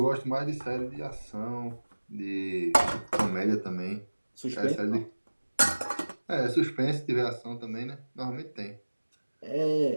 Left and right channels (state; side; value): inverted; both; correlation -1.00